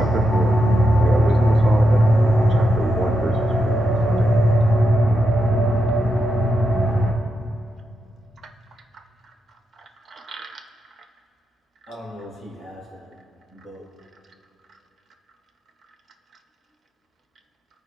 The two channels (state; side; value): normal; both; correlation 0.85